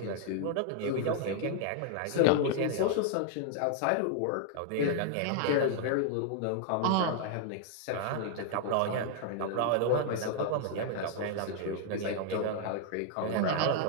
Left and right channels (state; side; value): different; both; correlation 0.00